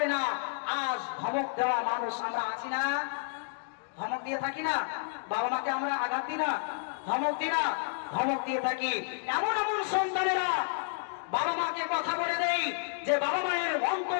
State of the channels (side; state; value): right; silent; digital silence